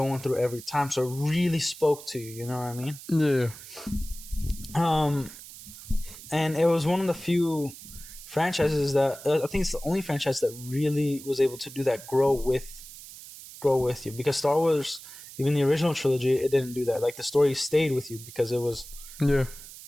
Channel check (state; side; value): noise; right; hiss, 15 dB below the sound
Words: through every time. So it really spoke to you, you know what I mean? Yeah. And it was one of the few franchises that I think it's the only franchise that really was able to do that, grow with you. Because Star Wars, even the original trilogy, it didn't do that. Like, the story stayed with you because it was